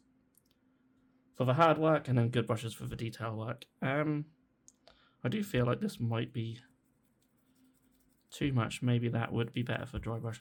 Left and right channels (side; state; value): both; identical; correlation 1.00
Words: for the hard work and then good brushes for the detail work. I do feel like this might be too much. Maybe that would be better for dry